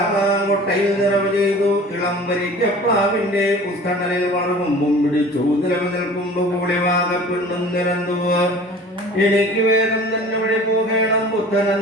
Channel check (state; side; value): normal; both; correlation 0.43